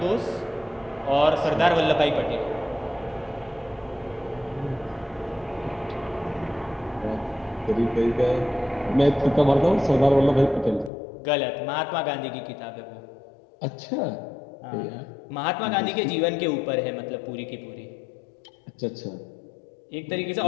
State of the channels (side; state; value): right; drops out; at 10.9 s